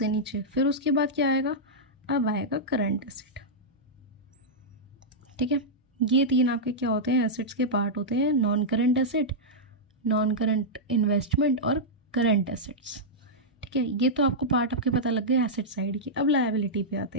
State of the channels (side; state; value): both; normal; correlation -0.09